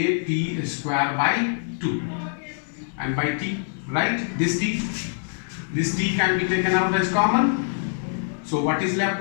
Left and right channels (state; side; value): silent; right; digital silence